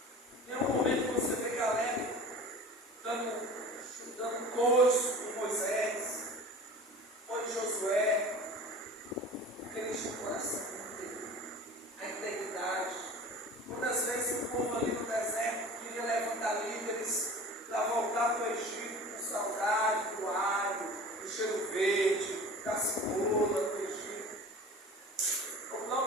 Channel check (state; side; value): normal; both; correlation 0.40